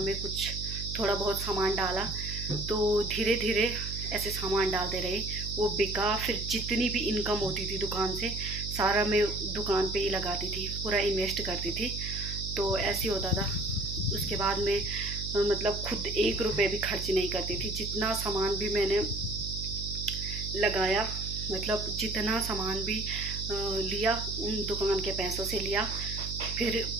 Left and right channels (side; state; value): right; noise; hum, 6 dB below the sound